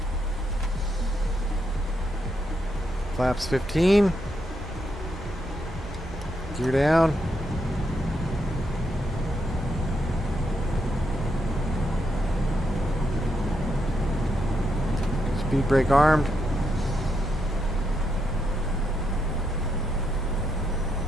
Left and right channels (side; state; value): both; normal; correlation 0.80